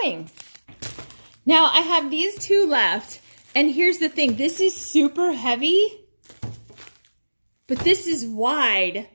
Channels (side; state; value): both; inverted; correlation -1.00